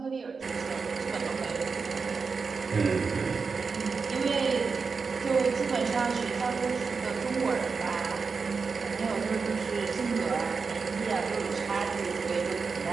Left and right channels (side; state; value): left; quieter; 5.0 dB